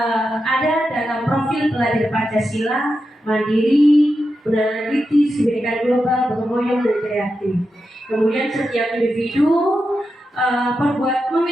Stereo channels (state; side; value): normal; both; correlation 0.88